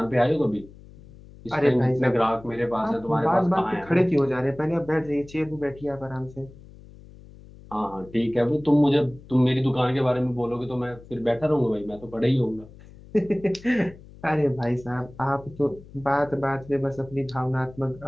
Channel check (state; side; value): noise; left; hum, 20 dB below the sound